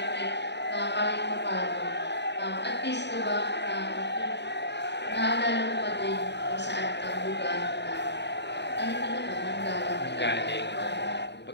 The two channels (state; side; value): late; right; 0.50 ms